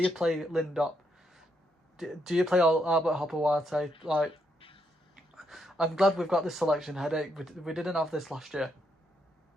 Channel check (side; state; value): both; normal; correlation 0.78